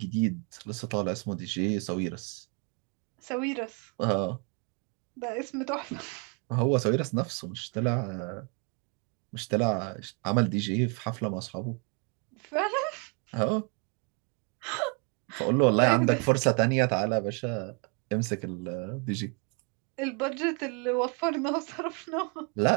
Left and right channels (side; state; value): left; quieter; 35.6 dB